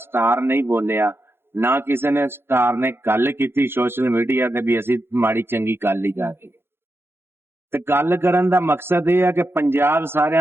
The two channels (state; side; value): late; left; 0.11 ms